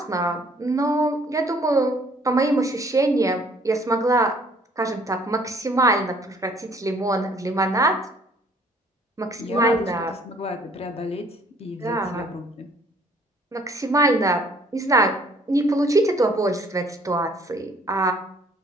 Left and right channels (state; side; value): normal; both; correlation 0.59